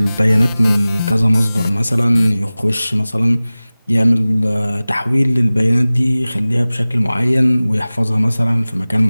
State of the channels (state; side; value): inverted; both; correlation -0.98